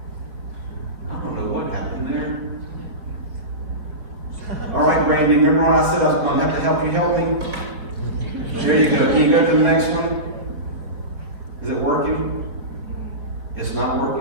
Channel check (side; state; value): left; late; 4.7 ms